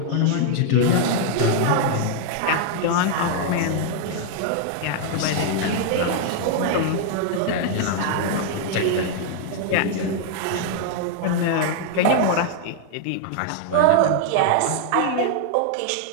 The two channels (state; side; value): different; both; correlation 0.00